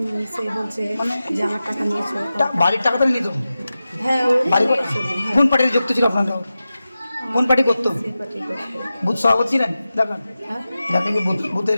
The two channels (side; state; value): both; inverted; correlation -0.94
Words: সে বলছে যে আমার টাকা নিয়েছো। বাড়ির টাকা তো নিত? হ্যাঁ, কোন পার্টিতে যুক্ত ছিল আপনারা? কোন পার্টি করতো? বুথ সভাপতি ছিলেন? দেখেন আপনি কি বুথের